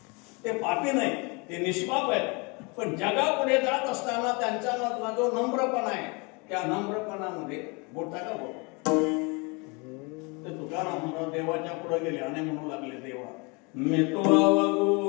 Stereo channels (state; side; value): quieter; right; 29.9 dB